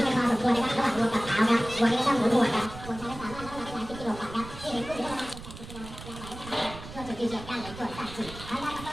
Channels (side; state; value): right; noise; rumble, 13 dB below the sound